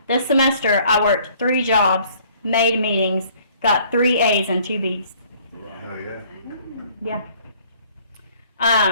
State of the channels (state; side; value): inverted; both; correlation -0.58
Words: This semester, I worked 3 jobs, made meetings, got 3 A's and 2 B's. Oh, yeah. Yeah.